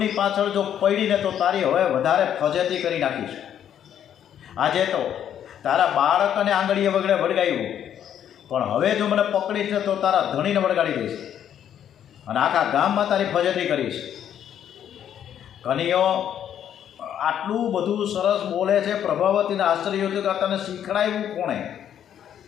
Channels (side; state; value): right; quieter; 9.8 dB